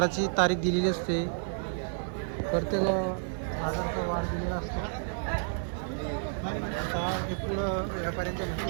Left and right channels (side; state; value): left; silent; 57 dB below the other